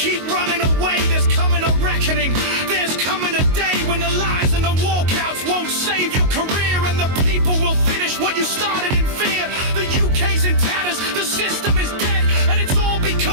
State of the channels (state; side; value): late; left; 22 ms